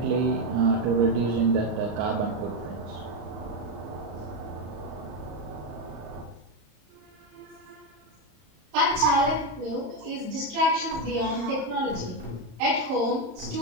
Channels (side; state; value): left; late; 34 ms